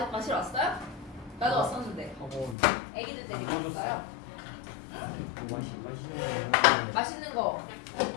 왔어요? 나도 왔었는데. 학원 애기들 데리고 왔어요. 마시는 맛있는 거.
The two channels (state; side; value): drops out; right; at 2.6 s